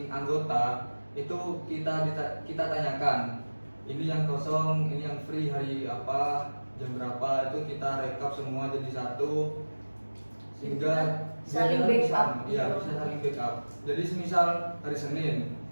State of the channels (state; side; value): inverted; both; correlation -1.00